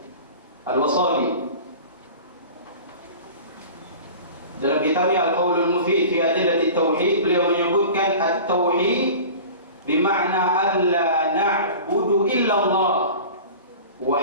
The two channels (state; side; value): inverted; both; correlation -0.38